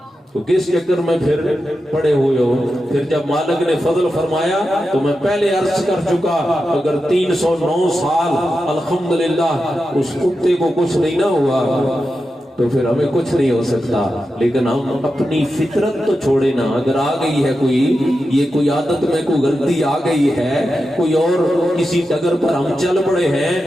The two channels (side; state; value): both; normal; correlation 0.90